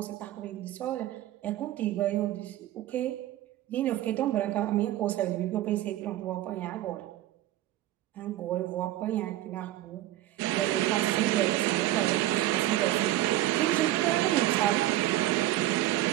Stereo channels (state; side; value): quieter; left; 14.6 dB